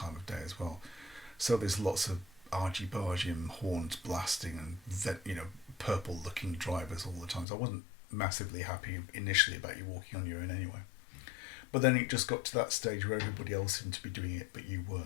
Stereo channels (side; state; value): right; drops out; at 7.5 s